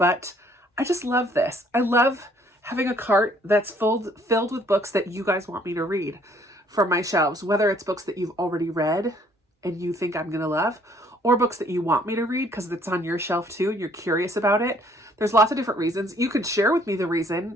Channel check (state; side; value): normal; both; correlation 0.61